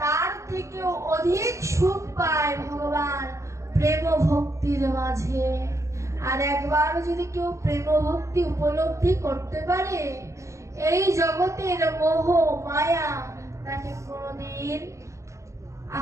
থেকেও অধিক সুখ পায় ভগবান প্রেম ভক্তির মাঝে। আর একবার যদি কেউ প্রেম ভক্তি উপলব্ধি করতে পারে, এই জগতের মোহ মায়া তাকে কোনদিন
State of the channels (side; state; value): left; late; 0.15 ms